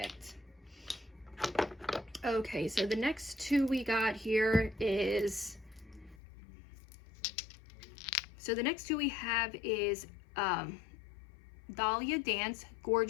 Okay, so the next two we got here is, so the next two we have is Dahlia Dance,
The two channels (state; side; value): drops out; right; at 6.2 s